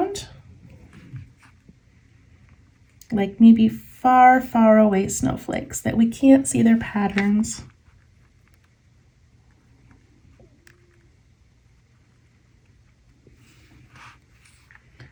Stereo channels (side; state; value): both; identical; correlation 1.00